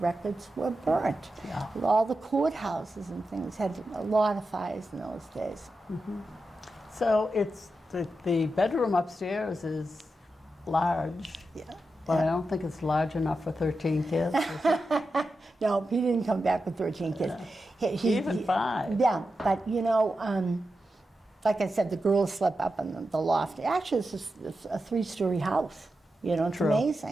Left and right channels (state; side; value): normal; both; correlation 0.90